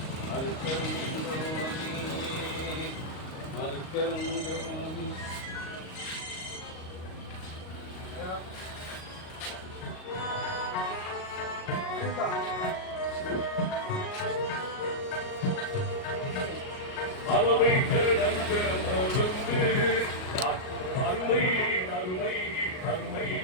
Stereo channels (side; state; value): right; late; 38 ms